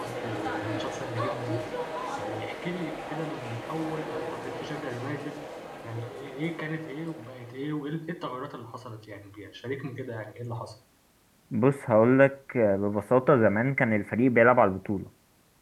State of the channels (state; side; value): identical; both; correlation 1.00